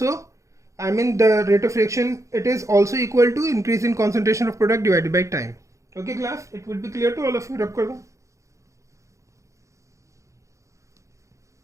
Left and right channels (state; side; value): late; left; 0.15 ms